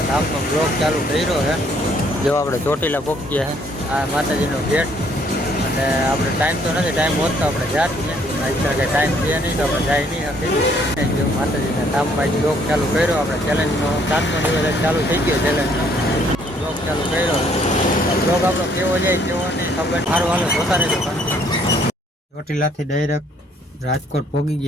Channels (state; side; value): normal; both; correlation 0.65